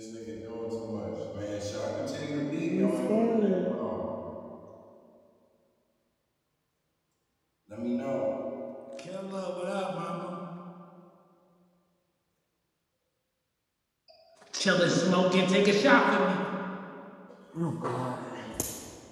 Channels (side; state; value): both; identical; correlation 1.00